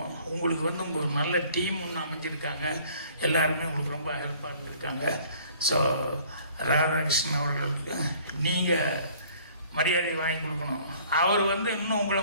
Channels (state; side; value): inverted; both; correlation -0.55